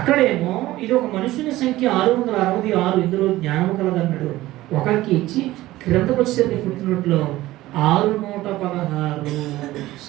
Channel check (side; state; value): left; quieter; 16.7 dB